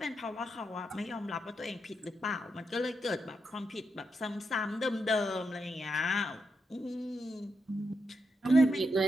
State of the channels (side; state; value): both; normal; correlation 0.83